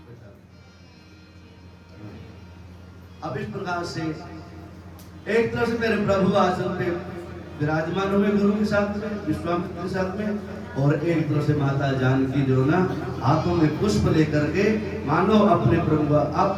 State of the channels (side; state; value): both; identical; correlation 1.00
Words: अब इस प्रकार से एक तरफ से मेरे प्रभु आसन पे विराजमान हुए गुरु के साथ में, विश्वामित्र के साथ में, और एक तरफ से माता जानकी जो ना हाथों में पुष्प लेकर के मानो अपने प्रभु।